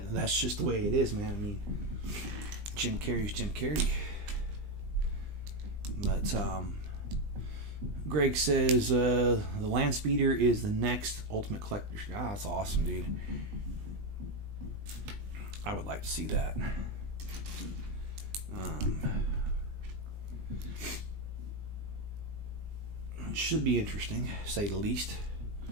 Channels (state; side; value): late; left; 20 ms